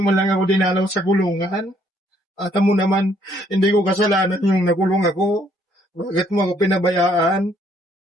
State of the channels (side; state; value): both; normal; correlation 0.66